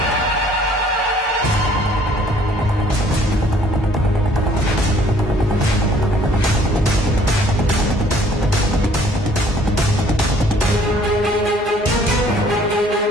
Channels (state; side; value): normal; both; correlation 0.58